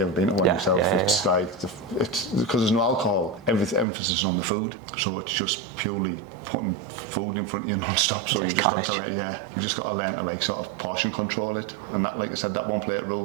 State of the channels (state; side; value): drops out; left; at 3.9 s